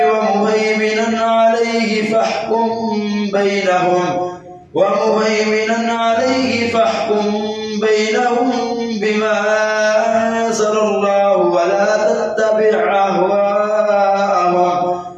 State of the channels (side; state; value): both; identical; correlation 1.00